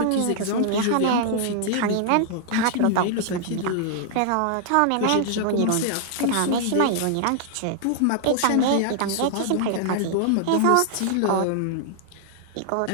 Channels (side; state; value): both; different; correlation -0.01